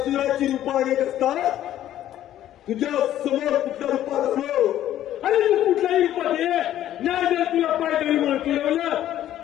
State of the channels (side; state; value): right; quieter; 12.3 dB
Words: रूपा अनेक असतात तुझ्या समोर कुठल्या रूपात असलो आणि तू कुठल्याही रूपात ये नाही जर तुला पायदळी म्हणून तुडवलं